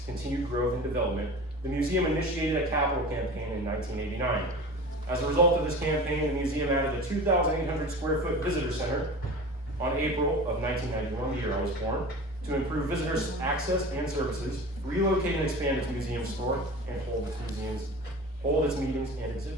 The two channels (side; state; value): both; normal; correlation 0.35